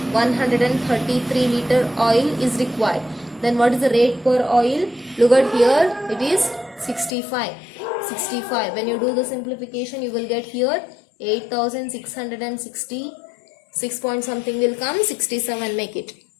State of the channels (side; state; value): right; drops out; at 7.2 s